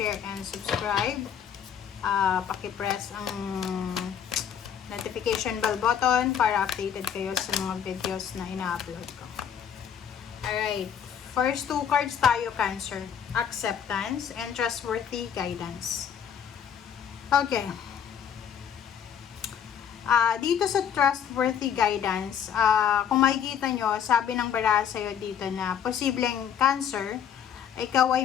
and subscribe. Paki-press ang notification bell button para updated kayo sa mga videos na ina-upload ko. Alright. First two cards tayo, Cancer. Acceptance and trustworthy guidance. Okay. Dito sa trustworthy guidance, kung makikita nyo, sabi ng baraha sa'yo dito na posibleng Cancer, ikaw ay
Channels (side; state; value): right; quieter; 8.3 dB